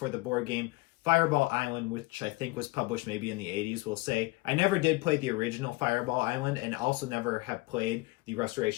the board game Fireball Island, which I think was published maybe in the 80s, we'll say. I never did play the original Fireball Island, and also never have played the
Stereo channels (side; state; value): right; quieter; 22.8 dB